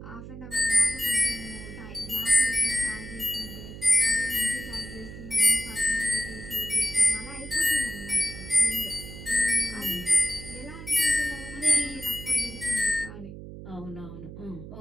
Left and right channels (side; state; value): right; noise; hum, 12 dB below the sound